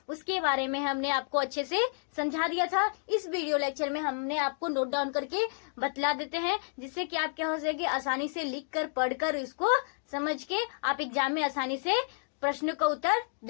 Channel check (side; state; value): right; silent; digital silence